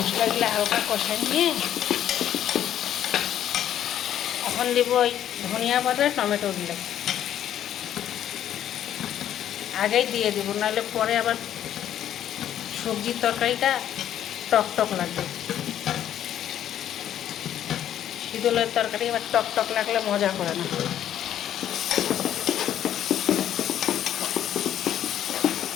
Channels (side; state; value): right; quieter; 10.9 dB